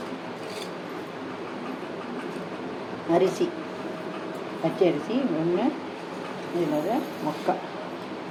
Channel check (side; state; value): both; identical; correlation 1.00